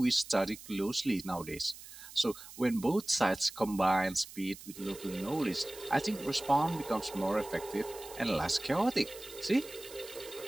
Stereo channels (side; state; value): right; noise; hiss, 16 dB below the sound